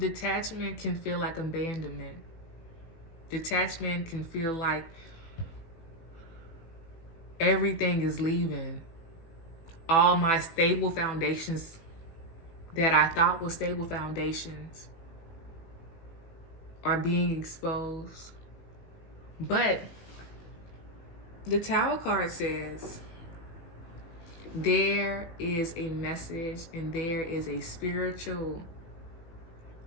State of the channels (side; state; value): right; late; 18 ms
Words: can feel like abandonment. Detachment can feel like everything is leaving. All my stable foundations that I thought were stable foundations are being exposed. But the Tower card says there is a message and there is a spiritual